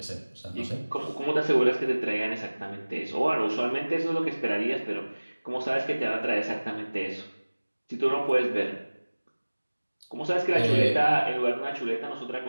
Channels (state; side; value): inverted; both; correlation -1.00